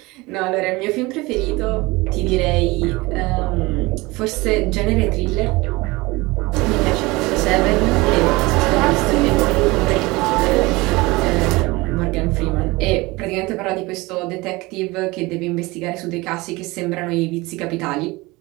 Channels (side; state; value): left; quieter; 22.4 dB